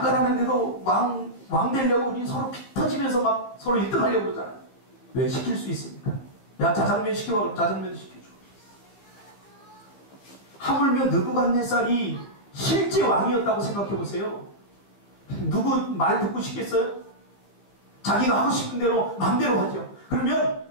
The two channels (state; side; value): late; right; 15 ms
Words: 하는데도 왕 되려고 우리 서로 피 터지면서 막 서로 1등 하려고 그러잖아요. 왜? 시킬 수 있습니까? 야 짜장면 시켜봐. 그럼 짜장면도 시켜줘. 하물며 느부갓네살이 실제 왕이었다고 생각해보세요. 누구 말 듣고 싶겠어요? 자기가 하고 싶은 대로 마음대로 하죠. 그러면